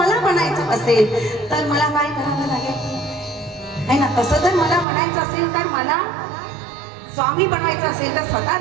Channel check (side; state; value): left; drops out; at 4.9 s